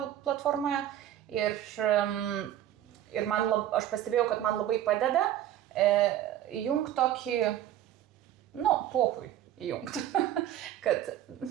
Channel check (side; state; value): left; quieter; 11.9 dB